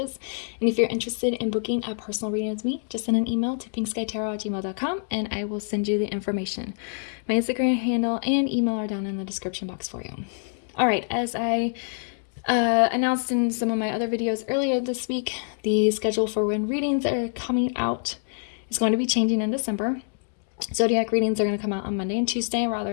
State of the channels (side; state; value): right; silent; 61 dB below the other